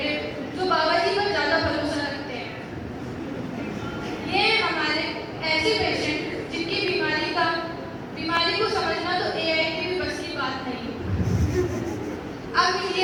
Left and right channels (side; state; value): both; identical; correlation 1.00